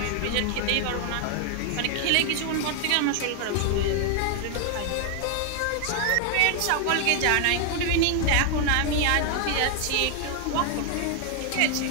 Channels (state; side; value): different; both; correlation 0.00